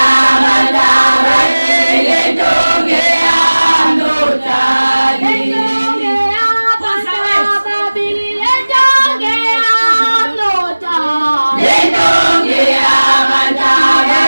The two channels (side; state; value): both; inverted; correlation -1.00